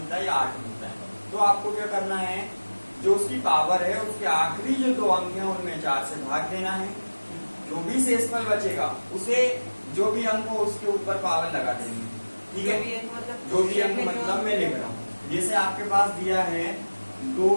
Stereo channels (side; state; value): both; inverted; correlation -1.00